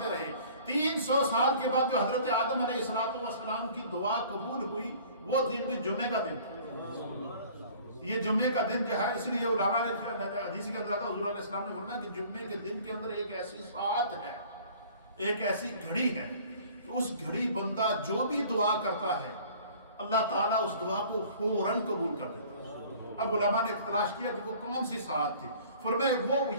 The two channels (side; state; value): both; inverted; correlation -0.50